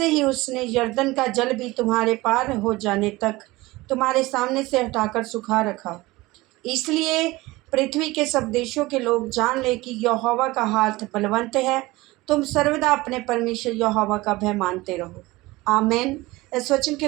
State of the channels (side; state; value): left; quieter; 20.4 dB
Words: ही उसने यरदन का जल भी तुम्हारे पार हो जाने तक तुम्हारे सामने से हटाकर सुखा रखा। इसलिए पृथ्वी के सब देशों के लोग जान ले कि यहोवा का हाथ बलवंत है। तुम सर्वदा अपने परमेश्वर यहोवा का भय मानते रहो। आमीन। इस वचन